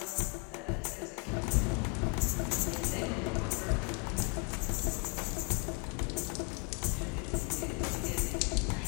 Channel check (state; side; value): quieter; right; 35.5 dB